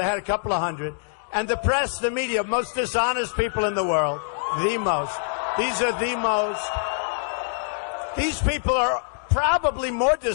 had a couple of hundred. And the press, the media, most dishonest people in the world. The most. These are the most. These people are probably more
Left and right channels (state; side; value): silent; right; digital silence